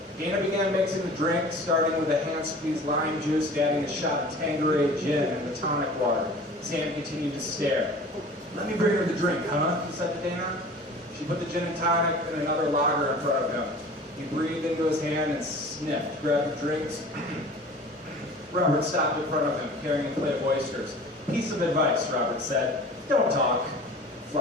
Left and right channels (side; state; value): both; normal; correlation 0.42